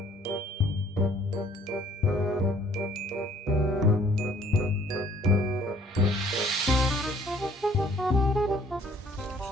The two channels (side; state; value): both; normal; correlation 0.59